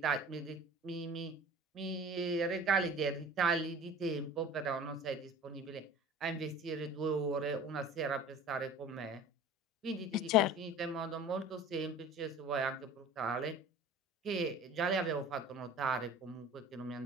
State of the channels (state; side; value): normal; both; correlation 0.42